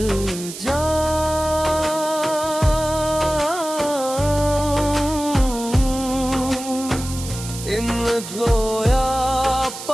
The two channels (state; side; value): noise; right; hiss, 11 dB below the sound